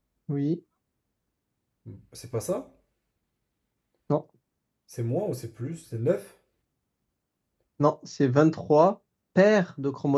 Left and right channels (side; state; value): both; identical; correlation 1.00